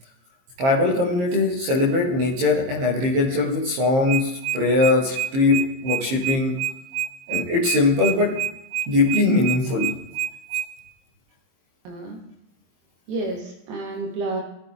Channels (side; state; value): left; late; 22 ms